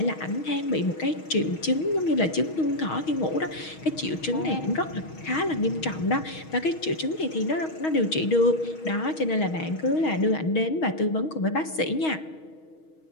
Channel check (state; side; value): late; right; 6.3 ms